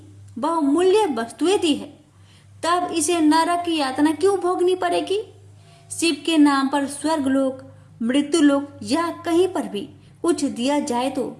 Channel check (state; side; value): identical; both; correlation 1.00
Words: बहुमूल्य वस्तुएं दी है, तब इसे नरक की यातना क्यों भोगनी पड़ेगी? शिव के नाम पर स्वर्गलोक, मृत्युलोक या कहीं पर भी कुछ दिया जाए तो